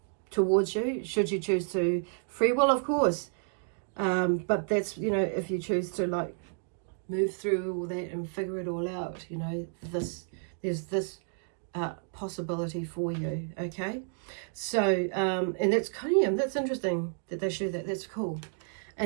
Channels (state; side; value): silent; left; digital silence